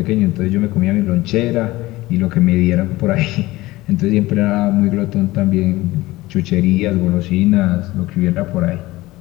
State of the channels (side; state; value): right; quieter; 18.8 dB